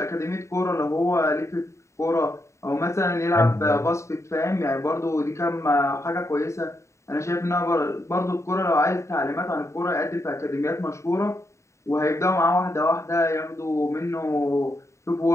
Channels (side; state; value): right; late; 0.14 ms